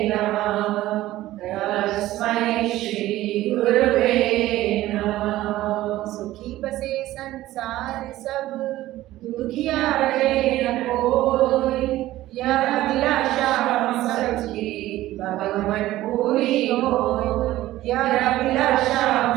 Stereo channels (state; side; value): quieter; left; 15.6 dB